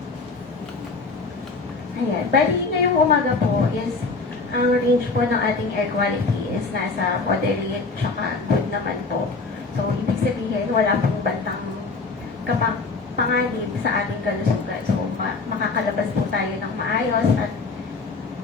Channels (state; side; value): quieter; right; 4.0 dB